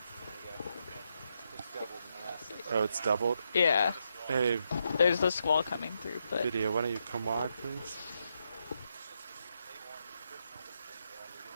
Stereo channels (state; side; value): inverted; both; correlation -0.81